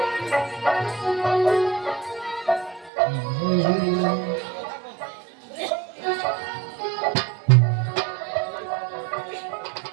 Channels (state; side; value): drops out; left; at 2.9 s